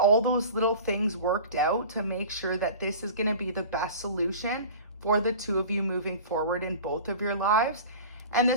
those little things worked out to make sure that this is going to be the best solution for the two of you moving forward in both of your lives. And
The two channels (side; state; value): both; inverted; correlation -0.38